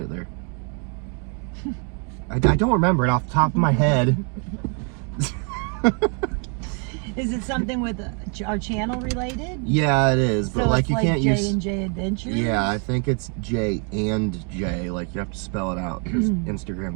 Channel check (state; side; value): quieter; left; 38.7 dB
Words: it there. I don't remember it off the top of my head. Is it something with our channel related? Yeah, it is. But so like you can't use J&J Adventures? Yeah, I think it's J and J. Like you have to spell it out because